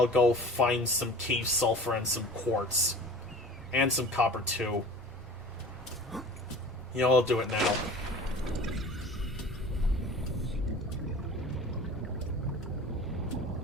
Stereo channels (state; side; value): normal; both; correlation 0.40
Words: go find some cave sulfur and some quartz. And some copper, too. You know, I'll do it now.